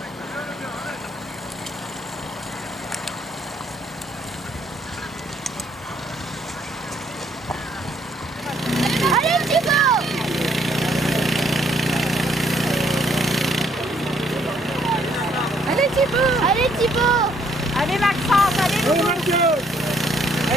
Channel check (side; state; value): both; normal; correlation 0.67